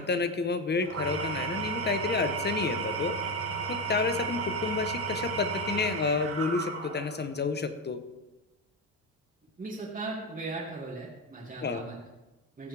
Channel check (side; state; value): both; normal; correlation 0.14